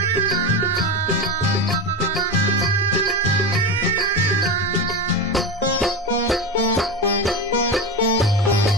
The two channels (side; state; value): both; normal; correlation 0.19